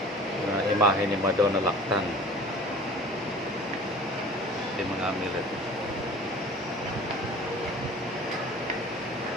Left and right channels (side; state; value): both; normal; correlation 0.43